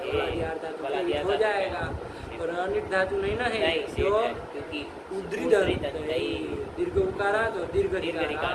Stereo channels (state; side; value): identical; both; correlation 1.00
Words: बलादियार धातु बला के दिया हो जाएगा। और अनिट धातु नहीं ना है, नहीं, जो शेड है, क्योंकि उद्री दंतई। दीर्घ उकारांत और दीर्घ दीर्घ ऋकारांत,